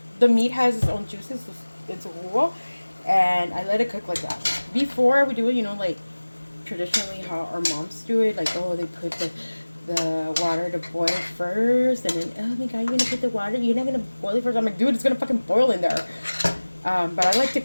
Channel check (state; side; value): inverted; both; correlation -1.00